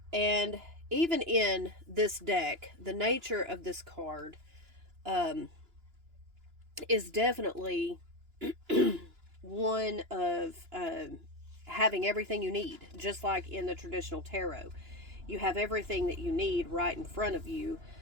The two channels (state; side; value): late; left; 2.9 ms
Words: And even in this deck, the nature of this card is definitely one of having everything you need, just like in the traditional tarot. You have everything that you need right in front of you.